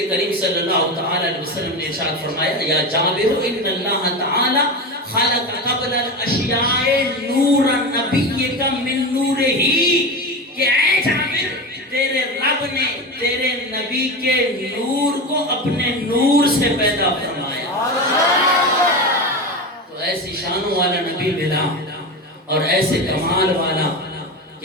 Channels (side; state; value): both; normal; correlation 0.22